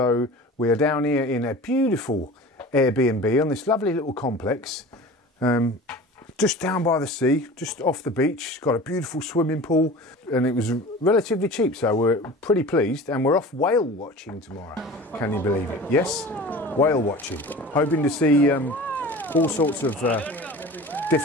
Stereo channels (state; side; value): normal; both; correlation 0.38